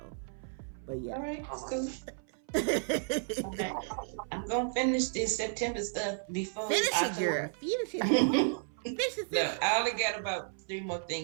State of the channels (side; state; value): left; silent; 56 dB below the other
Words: but yeah. All right, that's cool. Okay. I'm gonna finish this September stuff before Finish it, girl. Finish it. No, I only got about 3 more